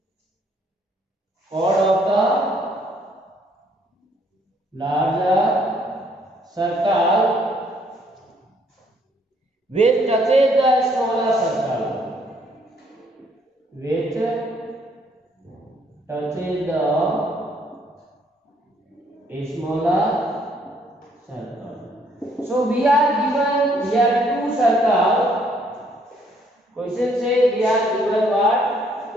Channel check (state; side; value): normal; both; correlation 0.66